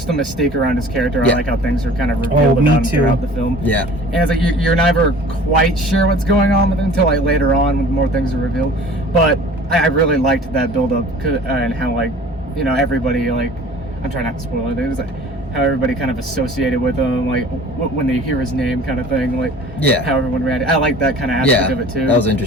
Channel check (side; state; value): both; normal; correlation 0.46